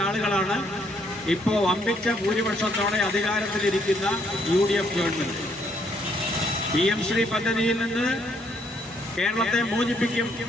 ആളുകളാണ് ഇപ്പോൾ വമ്പിച്ച ഭൂരിപക്ഷത്തോടെ അധികാരത്തിലിരിക്കുന്ന UDF ഗവൺമെന്റ്. PM ശ്രീ പദ്ധതിയിൽ നിന്ന് കേരളത്തെ മോചിപ്പിക്കും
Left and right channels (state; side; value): normal; both; correlation 0.69